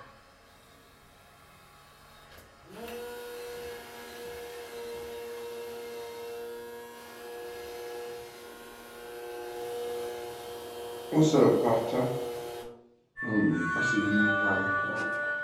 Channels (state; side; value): identical; both; correlation 1.00